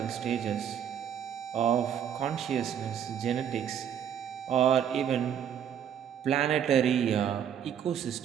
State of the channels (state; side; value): quieter; left; 9.0 dB